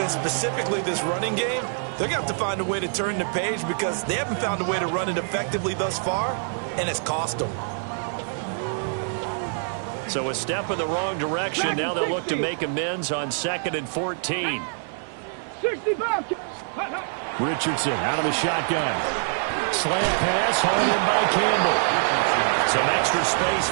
specifically this running game, they're going to have to find a way to turn the page because they haven't found a way to run it effectively thus far, and it's cost them. So a step in the wrong direction. Now they'll look to make amends on 2nd and 14. 65. Richardson out of the shotgun. Slant pass, hauled in by Campbell. Some extra space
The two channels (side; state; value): left; silent; 62 dB below the other